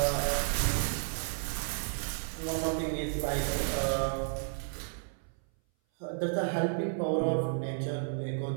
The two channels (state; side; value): silent; left; 56 dB below the other